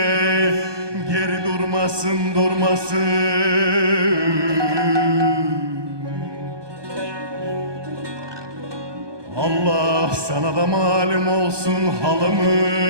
geri durmasın, durmasın. Allah sana da malum olsun halımız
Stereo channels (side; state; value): left; late; 1.2 ms